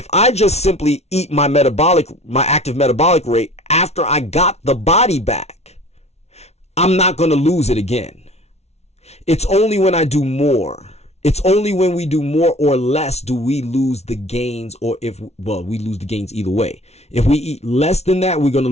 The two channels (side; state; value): right; late; 0.31 ms